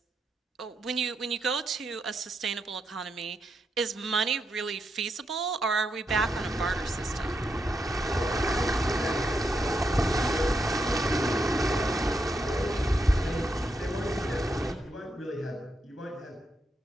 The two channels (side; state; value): both; normal; correlation 0.82